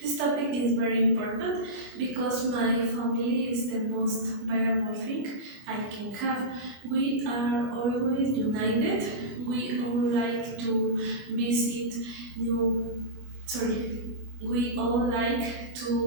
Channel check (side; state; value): left; late; 25 ms